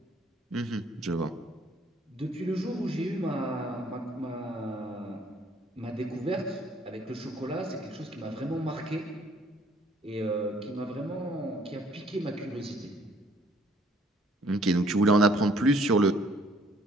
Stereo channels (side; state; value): both; normal; correlation 0.61